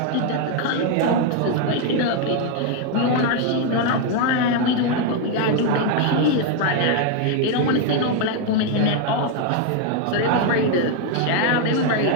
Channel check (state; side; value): different; both; correlation 0.01